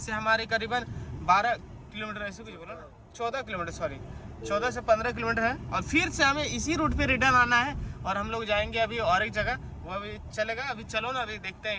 हमारे करीबन 12 किलोमीटर, ऐसे कुछ बोला ना, 14 किलोमीटर, सॉरी 14 से 15 किलोमीटर है। और फिर से हमें इसी रूट पे रिटर्न आना है और हम लोग जाएंगे अभी और एक जगह, वो अभी चलेगा। अभी चलो ना, अभी देखते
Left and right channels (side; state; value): both; identical; correlation 1.00